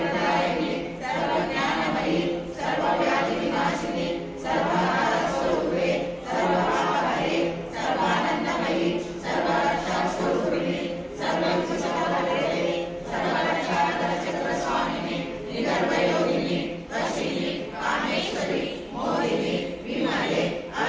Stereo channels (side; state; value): both; identical; correlation 1.00